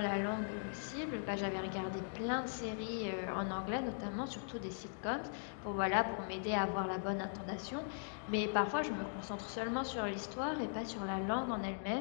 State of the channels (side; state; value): right; silent; digital silence